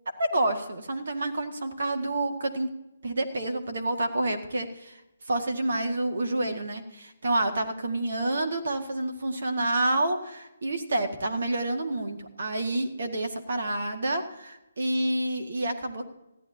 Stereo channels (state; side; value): inverted; both; correlation -0.86